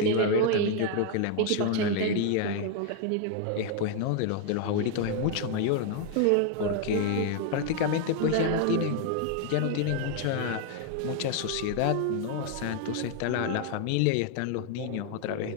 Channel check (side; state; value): both; different; correlation 0.00